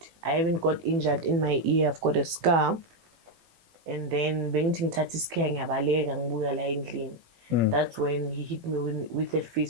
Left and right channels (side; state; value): left; late; 18 ms